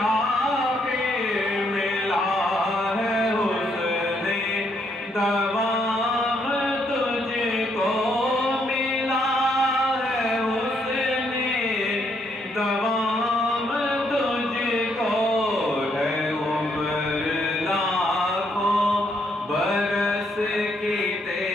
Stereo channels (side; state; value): both; normal; correlation 0.73